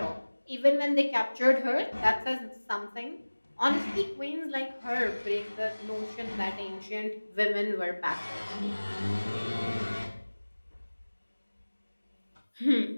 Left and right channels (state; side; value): inverted; both; correlation -1.00